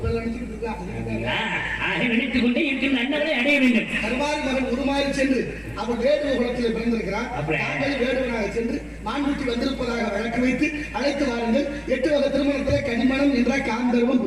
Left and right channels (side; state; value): both; identical; correlation 1.00